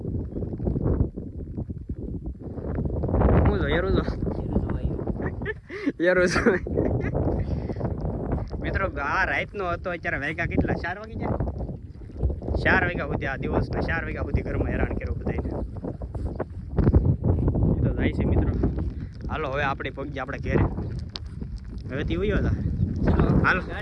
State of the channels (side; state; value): both; identical; correlation 1.00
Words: હું જો એરું મિત્રો આ રાતનો હતો, અત્યારે વાગ્યા કેટલા 4 વાગી જાય, 4 વાગ્યા સુધી આ દિવસના 4 વાગ્યા સુધી ઘરમાં હેરાન કર્યું બધાને. એ તો જાય છે મિત્રો. હાલો હવે આપણે પગી આપણે ઘેરે, હવેથી વયો હતા.